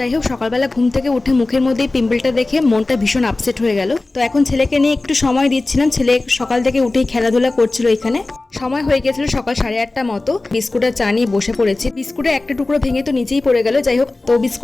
হোক, সকালবেলা ঘুম থেকে উঠে মুখের মধ্যে পিম্পলটা দেখে মনটা ভীষণ আপসেট হয়ে গেল। তো এখন ছেলেকে নিয়ে একটু সময় দিচ্ছিলাম। ছেলে সকাল থেকে উঠেই খেলাধুলা করছিল। এখানে সময় হয়ে গেছিল সকাল 8:30 মতো। বিস্কুট আর চা নিয়ে বসে পড়েছি। বিস্কুটের একটা টুকরো ভেঙে তো নিচেই পড়ে গেল। যাই হোক, তো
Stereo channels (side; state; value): right; quieter; 3.1 dB